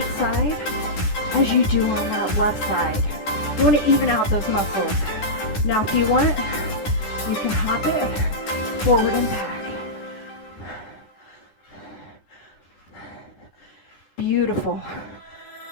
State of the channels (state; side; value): late; right; 14 ms